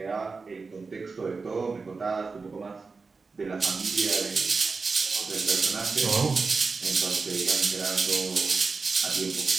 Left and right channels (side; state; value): left; quieter; 4.4 dB